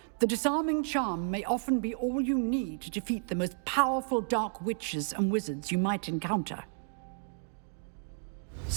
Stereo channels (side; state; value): left; silent; digital silence